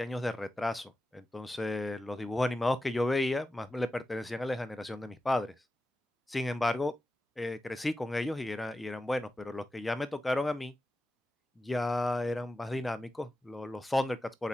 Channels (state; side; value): normal; both; correlation 0.93